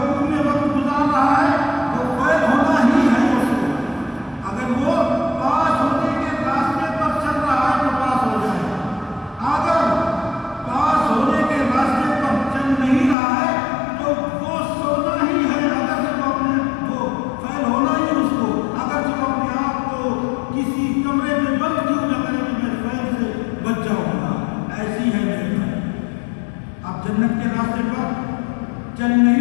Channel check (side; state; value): right; drops out; at 13.2 s